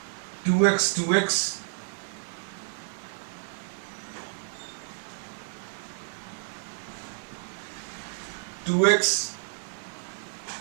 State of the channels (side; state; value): left; silent; digital silence